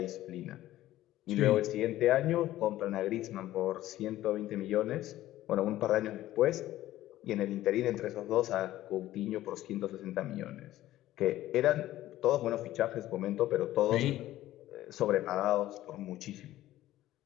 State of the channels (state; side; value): quieter; right; 14.7 dB